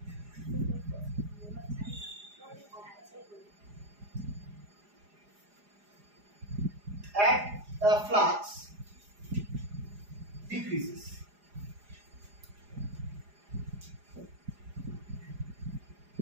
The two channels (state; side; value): late; left; 4.9 ms